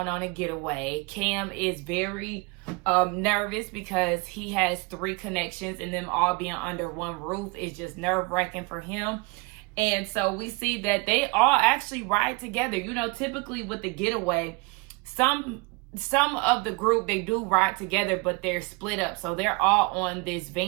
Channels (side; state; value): left; quieter; 28.2 dB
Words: on a getaway. Cam is very nervous because he has 3 connections, and them all being under one roof is just nerve-wracking for him. And so we see that they all actually ride together. You know, typically with the getaway, some of the group, they do ride together, but they're split up. So they're all on this